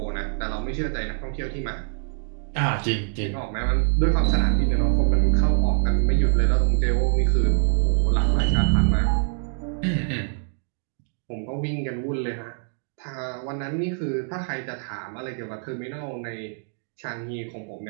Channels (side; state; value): left; silent; 62 dB below the other